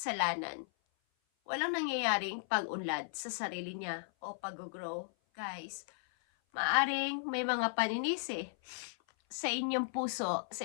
walang nangyayaring pag-unlad sa sarili niya o pag-grow. Guys, maaring may mga paninisi sa inyong puso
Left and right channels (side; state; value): right; silent; 54 dB below the other